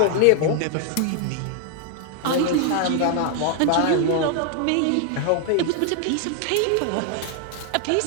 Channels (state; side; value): different; both; correlation 0.00